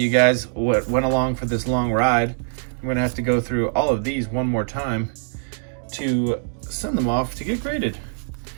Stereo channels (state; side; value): silent; left; digital silence